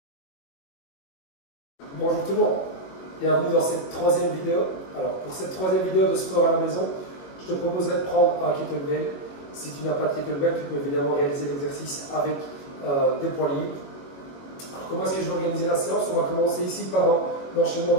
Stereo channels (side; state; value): right; late; 21 ms